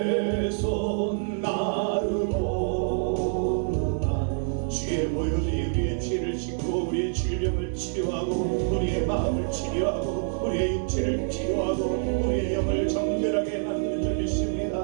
손 나르고 주의 보혈이 우리의 죄를 씻고 우리의 질병을 치료하고 우리의 마음을 치료하고 우리의 육체를 치료하고 우리의 영을 정결하게 만드는 줄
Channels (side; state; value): left; silent; 61 dB below the other